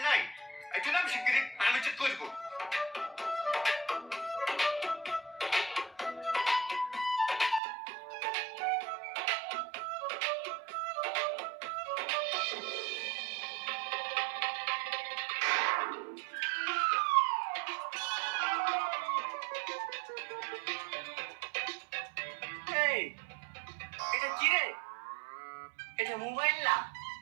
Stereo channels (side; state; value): left; drops out; at 7.6 s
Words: নাই? এটা নাম শিগগিরি, আমি চেক করবো। এই, এটা কি রে? এটা মোবাইল না,